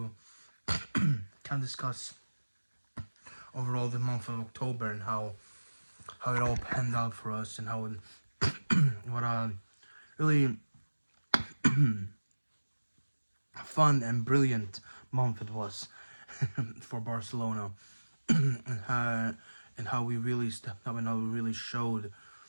kind of discuss overall the month of October and how it all panned out for us and how what a really fun and brilliant month it was for Barcelona, and how we really stepped up and how we really showed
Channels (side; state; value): both; inverted; correlation -1.00